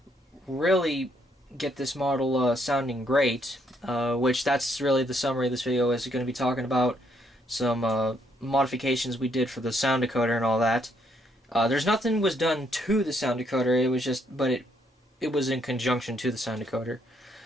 really get this model sounding great, which that's really the summary of this video is going to be talking about some modifications we did for the sound decoder and all that. There's nothing was done to the sound decoder, it was just, but it was in conjunction to the sound decoder.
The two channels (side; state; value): both; normal; correlation 0.72